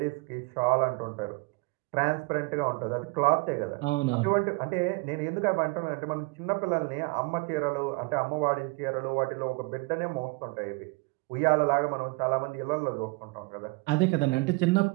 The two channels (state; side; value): quieter; left; 26.6 dB